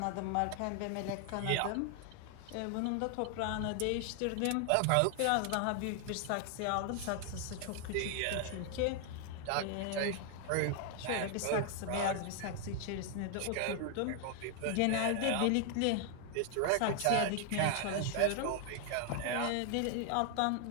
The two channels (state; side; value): different; both; correlation 0.00